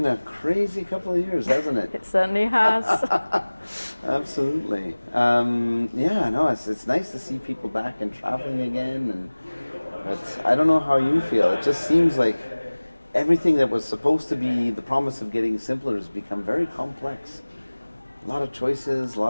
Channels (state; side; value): inverted; both; correlation -1.00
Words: a crazy couple of years, hasn't it? It certainly has. Absolutely. Yeah, no, it's nice to see people back and traveling again. But I don't know how you feel. It just seems like everything that was supposed to be the promise of getting simpler has become very complex. A lot of choices, a